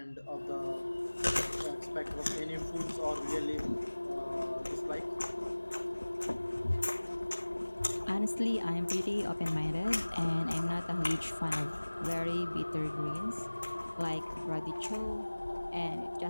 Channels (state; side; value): inverted; both; correlation -1.00